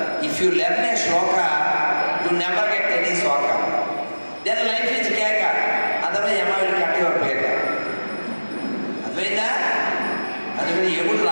if you learn a shloka you never get any shloka, then life is కేక, అదర్వైజ్ ఎమ్మ విల్ కట్ యువర్ పేక. అర్థమైందా? అందుకని ఎగుడు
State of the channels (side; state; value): both; inverted; correlation -1.00